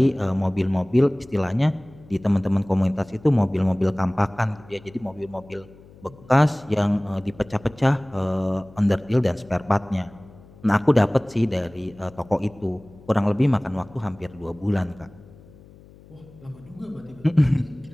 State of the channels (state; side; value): noise; left; hum, 23 dB below the sound